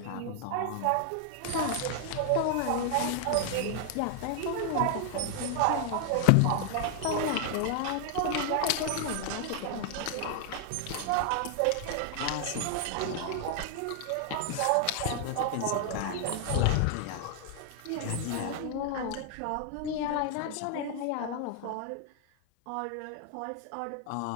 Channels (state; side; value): different; both; correlation 0.00